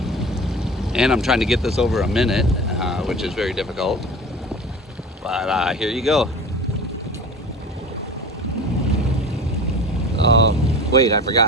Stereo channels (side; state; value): both; normal; correlation 0.36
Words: and I'm trying to get this over a minute, which is very difficult, but here you go. Oh wait, I